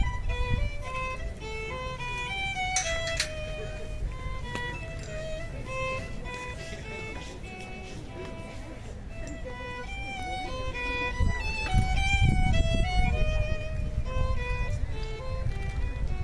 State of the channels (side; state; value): both; identical; correlation 1.00